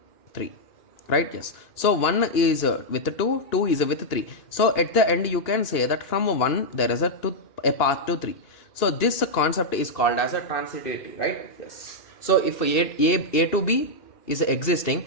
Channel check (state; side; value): late; right; 2.4 ms